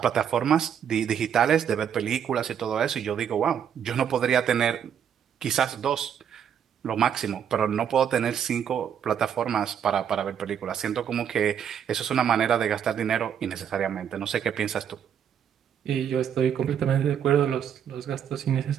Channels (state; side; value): quieter; left; 8.6 dB